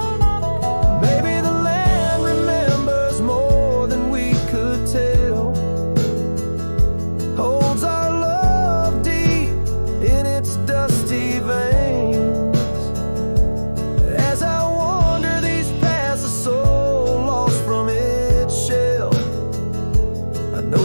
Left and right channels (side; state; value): both; inverted; correlation -1.00